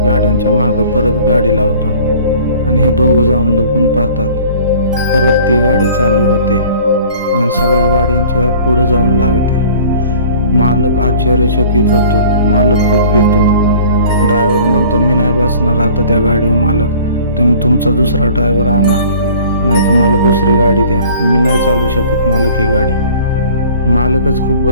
गाड्यांच्या मागं परत गाडी लावतो आणि हे दोघं जाऊन लपून पाहतात. परत ती गाडी चालू होते आणि सगळ्या गाड्यांच्या पुढे जाऊन लागते. मालक आश्चर्यचकित होतो, मालक खूप भीतो. ड्रायव्हर म्हणतो मी नाही बसणार आता त्या गाडीवर मालक, तुम्ही तुमचा दुसरा ड्रायव्हर आणा, नाही तर मला दुसरी गाडी द्या, मी नाही चालू शकत मालक ही गाडी. मालकच खूप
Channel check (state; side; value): inverted; both; correlation -0.48